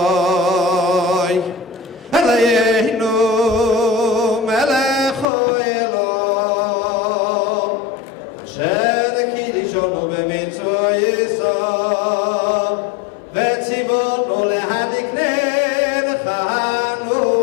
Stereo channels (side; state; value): right; drops out; at 5.2 s